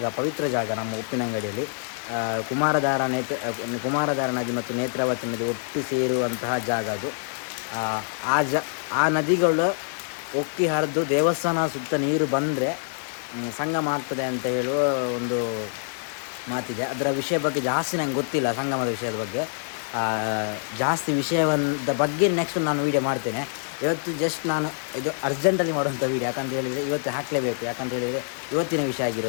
ಪವಿತ್ರ ಜಾಗ ನಮ್ಮ ಉಪ್ಪಿನಂಗಡಿಯಲ್ಲಿ. ಕುಮಾರಧಾರ ನದಿ ಮತ್ತು ನೇತ್ರಾವತಿ ನದಿ ಒಟ್ಟು ಸೇರುವಂತಹ ಜಾಗ ಅದು. ಆ ನದಿಗಳು ಒಕ್ಕಿ ಹರಿದು ದೇವಸ್ಥಾನ ಸುತ್ತ ನೀರು ಬಂದರೆ ಸಂಗಮ ಆಗ್ತದೆ ಅಂತ ಹೇಳುವ ಒಂದು ಮಾತಿದೆ. ಅದರ ವಿಷಯ ಬಗ್ಗೆ ಜಾಸ್ತಿ ನಂಗೆ ಗೊತ್ತಿಲ್ಲ, ಸಂಗಮದ ವಿಷಯದ ಬಗ್ಗೆ ಜಾಸ್ತಿ ವಿಷಯದ ಬಗ್ಗೆ ನೆಕ್ಸ್ಟ್ ನಾನು ವೀಡಿಯೋ ಮಾಡ್ತೇನೆ. ಇವತ್ತು ಜಸ್ಟ್ ನಾನು ಇದು ಅರ್ಜೆಂಟಲ್ಲಿ ಮಾಡುವಂಥ ವೀಡಿಯೋ, ಯಾಕಂತ ಹೇಳಿದರೆ ಇವತ್ತು ಹಾಕಲೇಬೇಕು, ಯಾಕಂತ ಹೇಳಿದರೆ ಇವತ್ತಿನ ವಿಷಯ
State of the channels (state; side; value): silent; right; 61 dB below the other